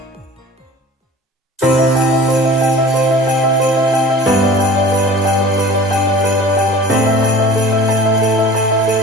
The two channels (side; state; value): both; normal; correlation 0.41